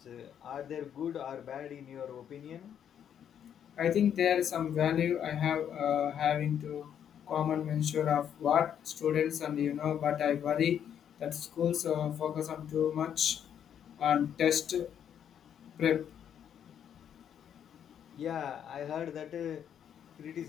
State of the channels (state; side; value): quieter; right; 9.0 dB